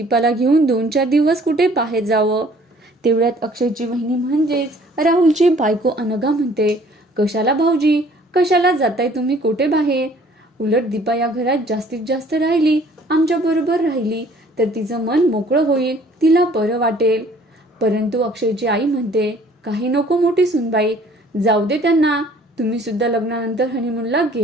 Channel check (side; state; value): both; normal; correlation 0.56